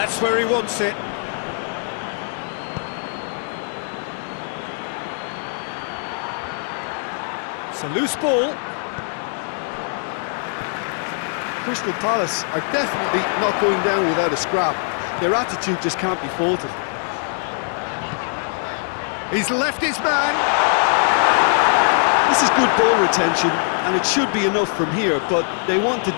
where he wants it. It's a loose ball. Crystal Palace are definitely not going down without a scrap. Their attitude just can't be faulted. He's left his man. This is good ball retention, and it should be enough from here, but they want to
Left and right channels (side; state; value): right; silent; 59 dB below the other